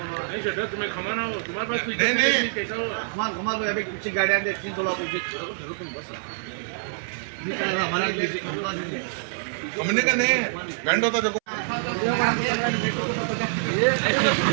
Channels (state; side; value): silent; left; 61 dB below the other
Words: तुम्हें खमाना हो तुम्हारे पास नहीं कुछ गाड़ियां 300 लाख तुम बस हमने का नहीं बैंड होता देखो